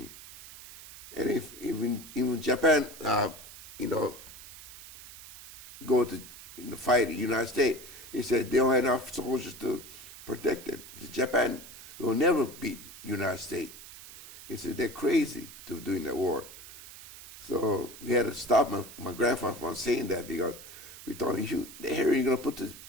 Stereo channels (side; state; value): right; noise; hiss, 16 dB below the sound